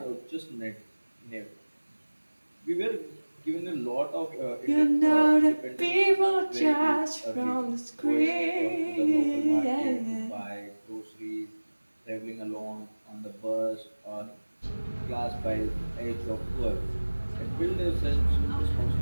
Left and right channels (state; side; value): inverted; both; correlation -1.00